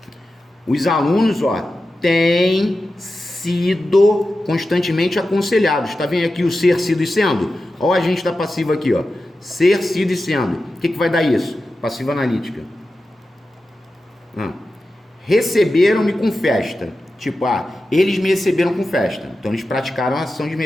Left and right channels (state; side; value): normal; both; correlation 0.92